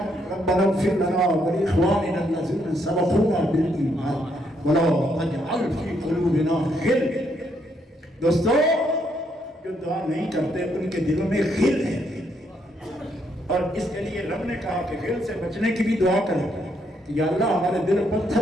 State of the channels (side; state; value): both; normal; correlation 0.74